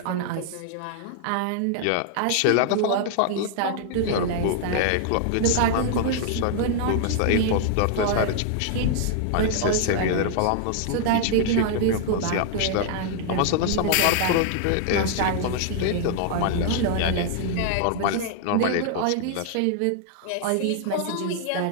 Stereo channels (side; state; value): both; different; correlation -0.01